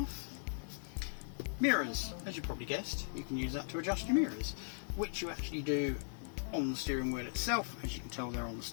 Mirrors, as you probably guessed, you can use that to adjust your mirrors, which you actually do on the steering wheel itself. As you can tell, they're on the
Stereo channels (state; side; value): silent; right; digital silence